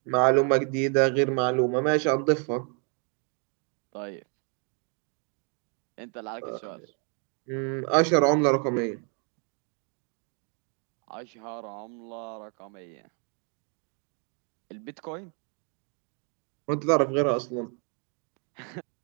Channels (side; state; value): left; quieter; 39.1 dB